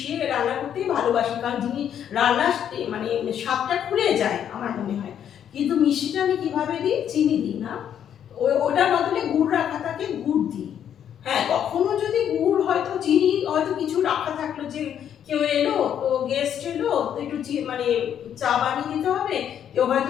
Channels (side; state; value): right; quieter; 9.4 dB